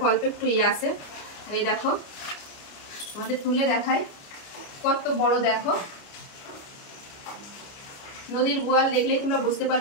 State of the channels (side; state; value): right; late; 29 ms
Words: অল্প একটু আছে। আর এই দেখো তোমাদের তুলে দেখাই কত বড়। দেখো নদীর বোয়াল দেখলেই তোমরা বুঝতে